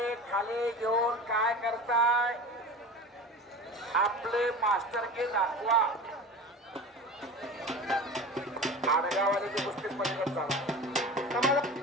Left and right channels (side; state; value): both; normal; correlation 0.34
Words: खाली घेऊन काय करताय आपले मास्टर के दाखवा आडगावाले कुस्ती पलीकडे